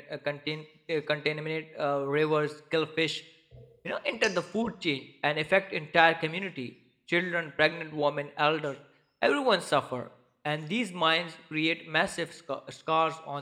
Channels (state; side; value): identical; both; correlation 1.00